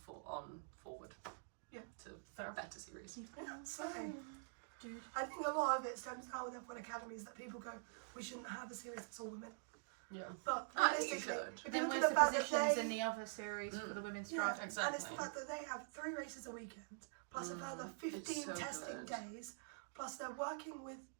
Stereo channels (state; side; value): silent; left; digital silence